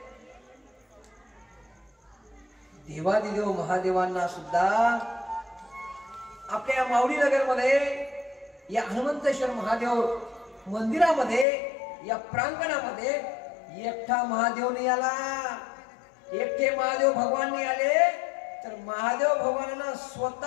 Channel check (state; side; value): drops out; right; at 11.5 s